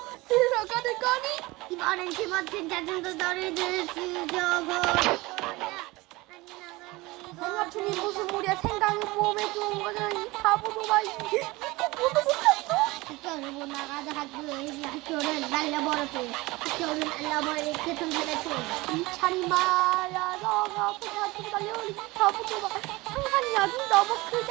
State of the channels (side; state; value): left; quieter; 21.8 dB